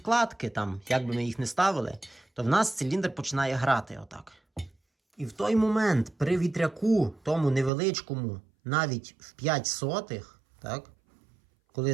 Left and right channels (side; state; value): left; drops out; at 7.7 s